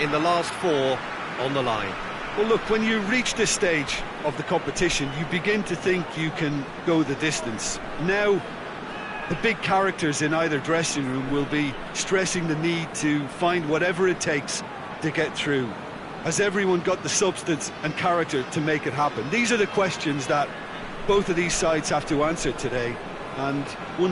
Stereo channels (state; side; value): identical; both; correlation 1.00